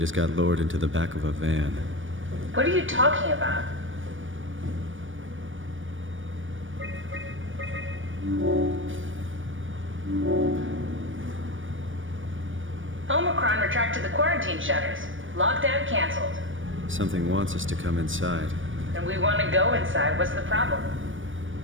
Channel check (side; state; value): left; late; 0.57 ms